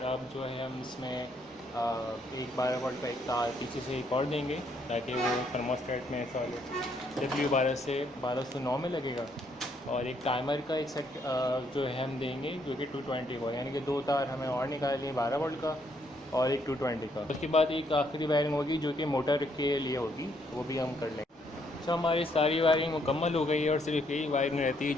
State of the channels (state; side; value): normal; both; correlation 0.71